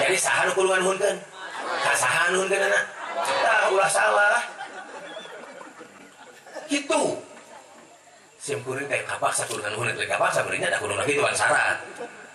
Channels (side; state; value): both; identical; correlation 1.00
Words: Jadi saha nu kudu nganuhunkeun? Ka saha nuhunkeunna? Tah ulah salah. Kitu. Simkuring kayak kapaksa kudu nganuhun teh kapaksa beureungnya da kudu kitu syarat.